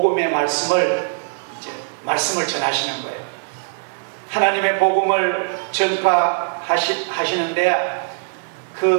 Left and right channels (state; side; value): silent; left; digital silence